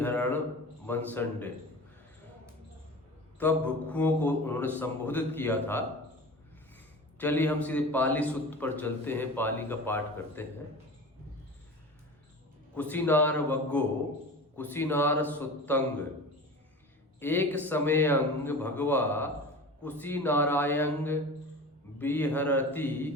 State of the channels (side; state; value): both; normal; correlation 0.34